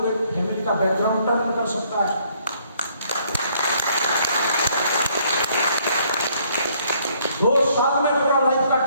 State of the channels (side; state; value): both; inverted; correlation -0.65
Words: फैमिली का बैकग्राउंड टर्न कर सकता है। 2 साल में पूरा लाइफ का